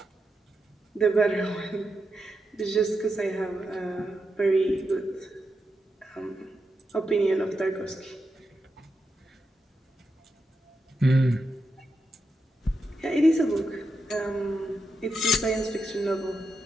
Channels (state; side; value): normal; both; correlation 0.86